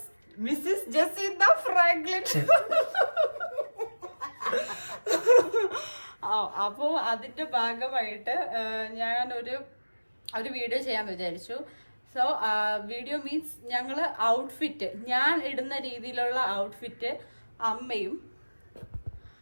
ജസീന്ത ഫ്രാങ്ക്ലിൻ. അപ്പോൾ അതിന്റെ ഭാഗമായിട്ട് ഞാൻ ഒരു വീഡിയോ ചെയ്യാൻ വിചാരിച്ചു. സോ വീഡിയോ മീൻസ് ഞങ്ങൾ ഔട്ട്ഫിറ്റ്, ഞാൻ ഇടുന്ന രീതിയിലുള്ള ഔട്ട്ഫിറ്റ്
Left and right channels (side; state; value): both; inverted; correlation -1.00